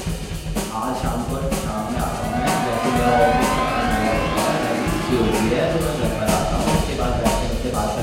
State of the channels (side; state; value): both; identical; correlation 1.00